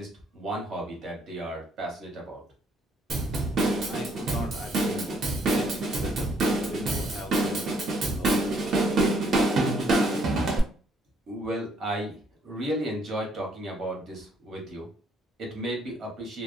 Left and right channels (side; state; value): both; normal; correlation 0.68